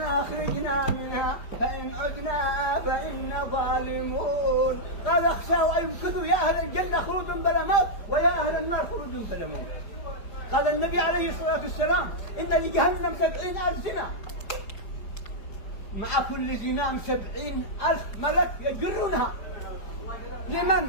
أخرجنا منها فإن عدنا فإنا ظالمون. قال اخشوا أن يمكثوا يا أهل الجنة خلود بلا موت ويا أهل النار خلود بلا موت. قال النبي عليه الصلاة والسلام إن لجهنم 70,000 زنا، مع كل زنام 70,000 ملك يجرونها.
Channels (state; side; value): late; right; 4.8 ms